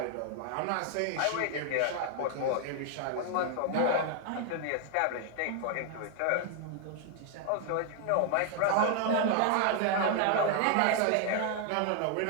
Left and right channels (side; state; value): both; different; correlation 0.00